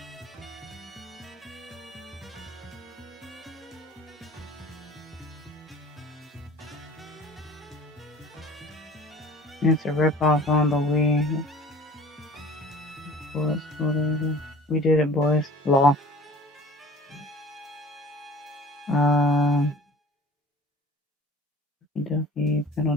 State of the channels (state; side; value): normal; both; correlation 0.45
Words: It's a ripoff on the Wii. We did it, boys. Law. Kentucky, Panel